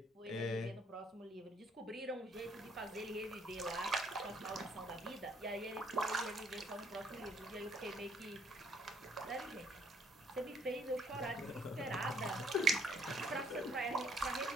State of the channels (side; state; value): both; normal; correlation 0.65